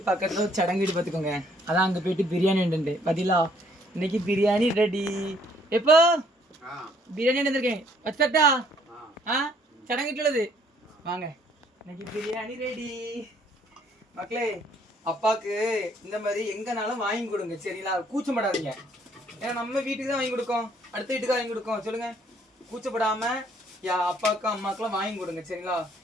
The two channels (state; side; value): normal; both; correlation 0.64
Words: பக்கத்தில் ஒரு சடங்கு வீடு பார்த்துக்கோங்க. அதான் அங்கே போயிட்டு பிரியாணி உண்டு பதிலா. இன்னைக்கு பிரியாணி ரெடி. எப்போ பிரியாணி வந்துருக்கேன் வச்சட்டா? சடங்கு வீட்டுள்ளது வாங்க. இன்னைக்கு பிரியாணி ரெடி மக்களே. அப்பாவுக்கு இந்த மாதிரி எங்கனாலும் வாங்கி கொடுங்க சரிங்களா, கூச்சப்படாதீங்க. ஏன்னா நம்ம வீட்டுக்கு தான் வாங்கி கொடுக்கோம், அடுத்த வீட்டுக்கு வாங்கி கொடுக்கோம். சொல்லுங்க, கூச்சப்படாமல் அப்பாவுக்கும் அம்மாக்கெல்லாம் வாங்கி கொடுங்க சரிங்களா.